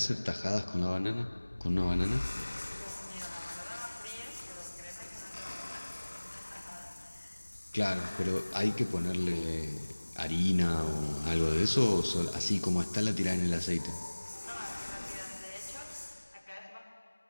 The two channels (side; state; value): both; inverted; correlation -1.00